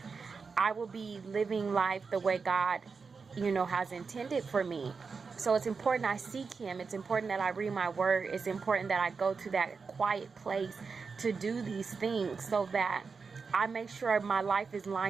I will be living life the way God, has intended for me. So it's important I seek Him. It's important that I read my Word. It's important that I go to that quiet place to do these things so that I make sure my life is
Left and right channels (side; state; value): left; quieter; 5.0 dB